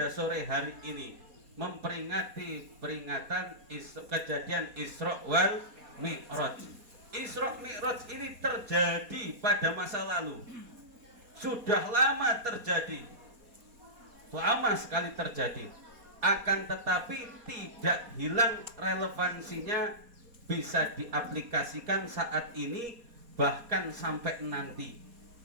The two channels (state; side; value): late; left; 4.2 ms